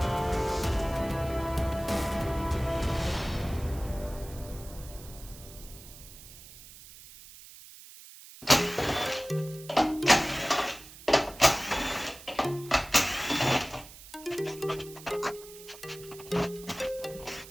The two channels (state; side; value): noise; right; hiss, 17 dB below the sound